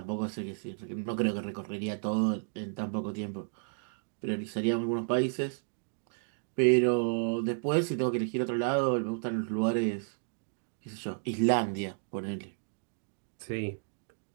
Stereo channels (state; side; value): silent; left; digital silence